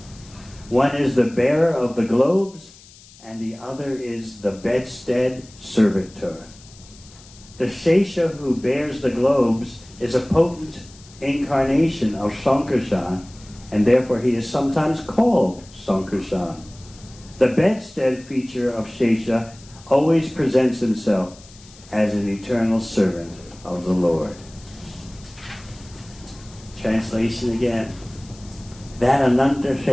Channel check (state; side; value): noise; left; hiss, 23 dB below the sound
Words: One is the bearer of the globes, and the other is the bedstead servitor. The Shesha who bears the globes is a potent incarnation of Sankarshan, and therefore he is sometimes called Sankarshan. The bedstead feature of Shesha always presents himself as an eternal servant of the Lord. Translation again. That Ananta